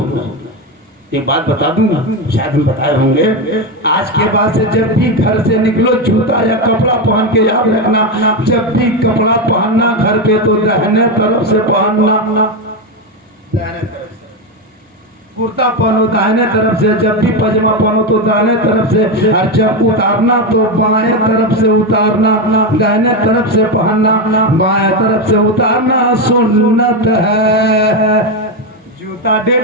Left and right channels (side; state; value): both; normal; correlation 0.11